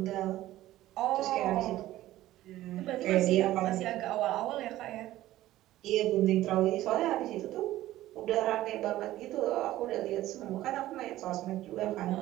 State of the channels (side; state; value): left; quieter; 15.1 dB